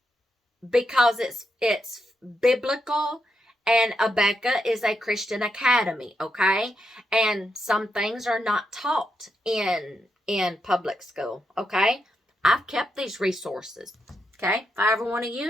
because it's biblical, and Abeka is a Christian academy, okay? And some things are not taught in public school, okay? I've kept these resources, okay? If I ever want to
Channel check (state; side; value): normal; both; correlation 0.82